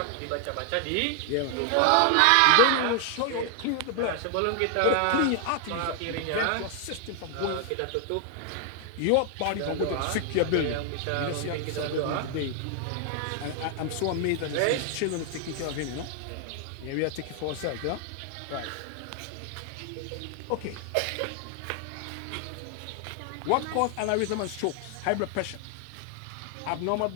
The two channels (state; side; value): different; both; correlation 0.00